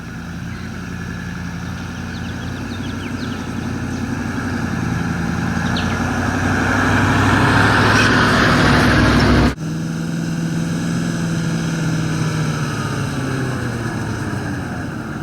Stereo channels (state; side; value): identical; both; correlation 1.00